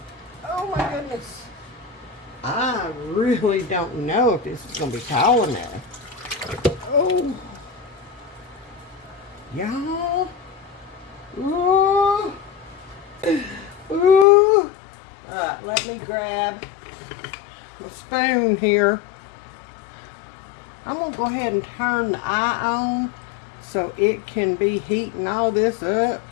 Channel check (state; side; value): drops out; right; at 14.2 s